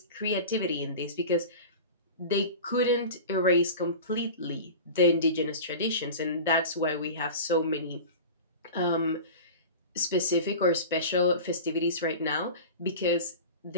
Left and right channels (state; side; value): inverted; both; correlation -0.33